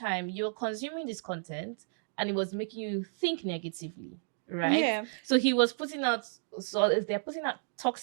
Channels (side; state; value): left; silent; digital silence